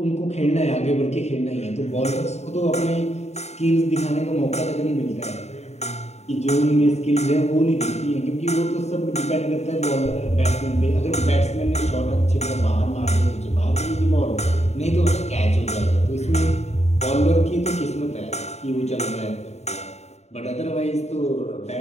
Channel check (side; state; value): right; late; 0.32 ms